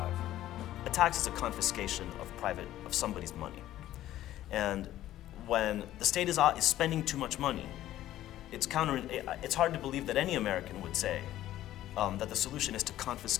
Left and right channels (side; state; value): right; quieter; 13.6 dB